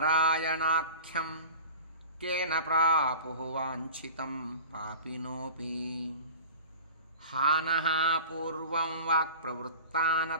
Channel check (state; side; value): inverted; both; correlation -0.39